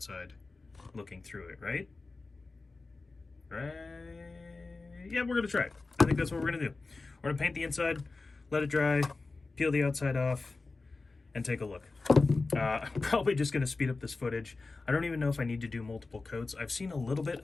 looking through it, right? Right? Yeah, we're gonna try it. I think that's what we're gonna do. We're gonna paint the inside, let it dry, peel the outside off, and take a look. I'm probably just gonna speed up this footage. I don't even know if I need to do multiple coats. I've seen a little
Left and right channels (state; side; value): quieter; right; 3.7 dB